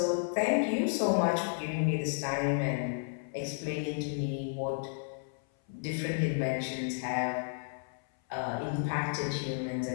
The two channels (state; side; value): silent; right; 56 dB below the other